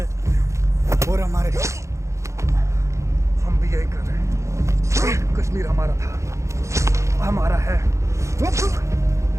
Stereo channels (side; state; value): left; late; 0.14 ms